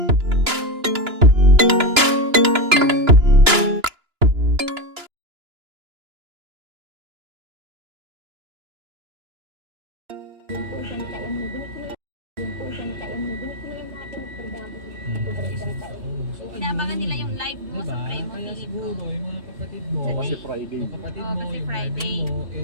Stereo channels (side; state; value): left; late; 2.9 ms